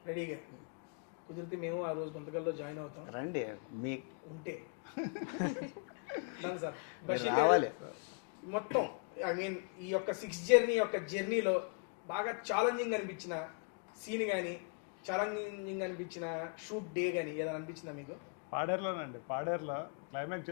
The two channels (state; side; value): quieter; right; 37.4 dB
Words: రెడీగా. కుదిరితే మేము ఆ రోజు గుంతకల్లో జాయిన్ అవుతాం రండి మీ ఉంటే. దాని సార్ బషీర్ గారు మొత్తం ఈ యొక్క 6 జర్నీలో బాగా ఛాలెంజింగ్ అనిపించిన సీన్ కానీ, ఛాలెంజింగ్ అనిపించిన షూట్ డే కానీ ఏదైనా అనిపించిందా మీకు? పాడేరులోనండి. పాడేరులో క్లైమాక్స్